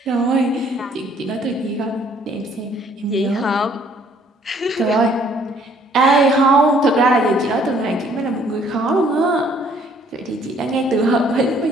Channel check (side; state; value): both; normal; correlation 0.61